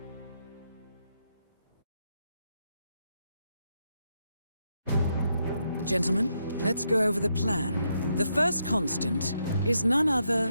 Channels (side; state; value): both; inverted; correlation -0.80